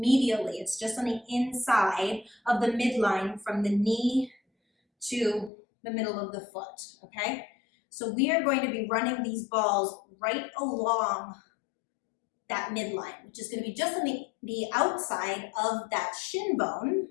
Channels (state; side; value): drops out; right; at 5.5 s